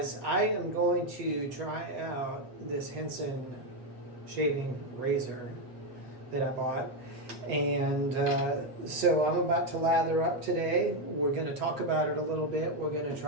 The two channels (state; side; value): late; left; 7.9 ms